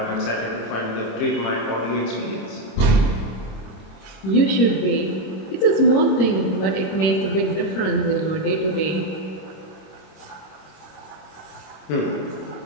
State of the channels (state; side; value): late; right; 26 ms